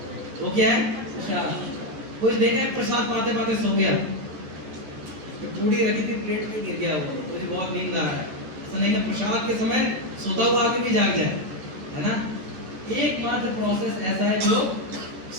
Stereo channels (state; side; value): late; left; 14 ms